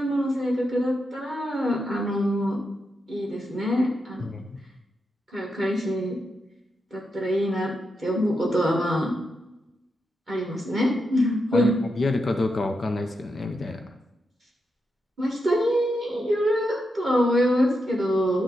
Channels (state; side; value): normal; both; correlation 0.85